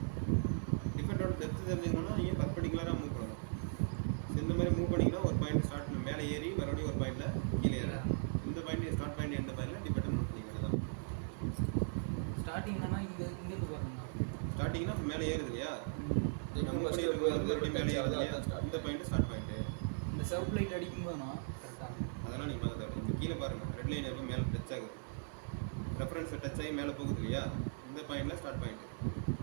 டிஃபெக்டோட டெப்த் தெரிஞ்சுக்கணும்னா நீங்கள் பர்பெண்டிகுலராக மூவ் பண்ணணும். இந்த மாதிரி மூவ் பண்ணிங்கன்னா ஒரு பாயிண்ட் ஸ்டார்ட் மேலே ஏறி மறுபடியும் ஒரு பாயிண்டில் கீழே ஏறும். இந்த பாயிண்ட் ஸ்டார்ட் பாயிண்ட் எண்டு பாயிண்டில் டிஃபெக்ட் நோட் பண்ணிக்கலாம். தான் ஸ்டார்டிங் தானே இங்கேருந்து பாருங்க. ஸ்டார்டிங்னா மேலே ஏறுது இல்லையா? மறுபடியும் மேலே ஏறுது இல்லையா? இந்த பாயிண்ட் ஸ்டார்ட் பாயிண்ட்டு. இந்த செல்ஃப் லைட் அடிக்கும்போதுனா கரெக்டாக அதெல்லாம் நீங்கள் பார்க்க கீழே பாருங்கள். ரெட் லைன் எப்போ மேலே டச் ஆகுது, ரெஃபரன்ஸை டச் ஆகி மேலே போகுது இல்லையா? இந்த பாயிண்டில் ஸ்டார்ட் பாயிண்ட்டு.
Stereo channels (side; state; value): left; silent; 52 dB below the other